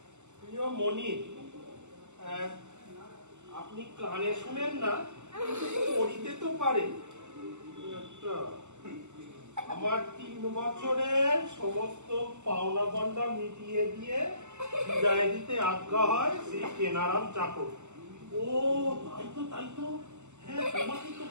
প্রিয় মনির, আপনি কানে শুনেন না পড়িতে তো পারেন। আমার 3 বছরের সমস্ত পাওনা বন্ডা মিটিয়ে দিয়ে বিদায় দিতে আজ্ঞা হয় সেই কেনারাম চাকর। ও তাই তো হ্যাঁ, তোমাকে তো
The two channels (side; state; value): left; late; 0.83 ms